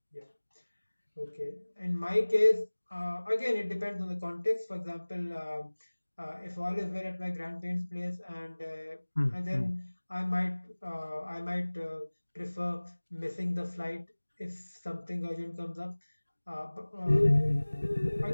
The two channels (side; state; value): both; inverted; correlation -1.00